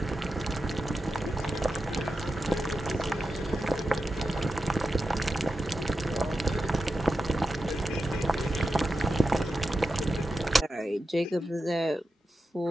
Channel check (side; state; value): both; normal; correlation 0.90